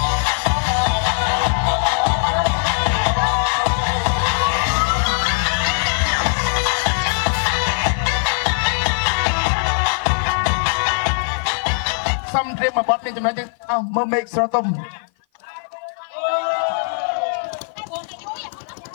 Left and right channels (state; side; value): silent; right; 55 dB below the other